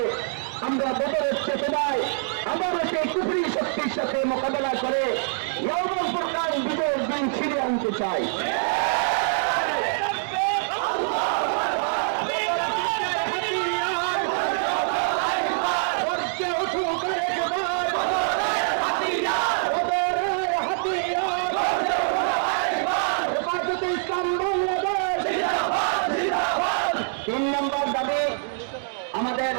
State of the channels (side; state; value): left; silent; 60 dB below the other